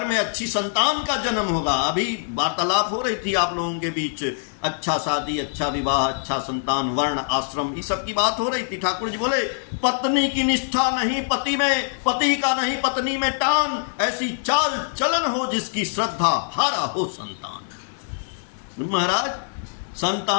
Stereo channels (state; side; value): silent; right; digital silence